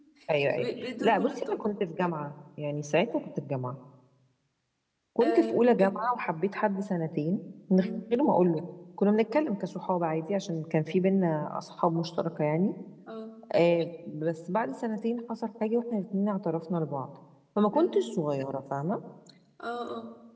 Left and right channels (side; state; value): both; identical; correlation 1.00